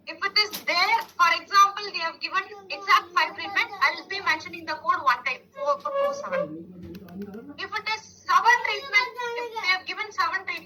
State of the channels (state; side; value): identical; both; correlation 1.00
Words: If it is there, for example, they have given exact 5 treatment, I will be mentioning the code one time, 427. If it is 7 treatment, if they have given 7